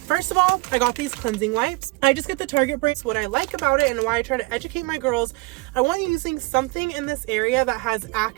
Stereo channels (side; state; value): left; quieter; 24.0 dB